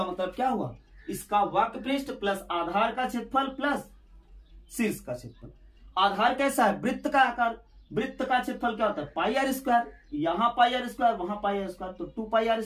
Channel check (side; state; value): both; identical; correlation 1.00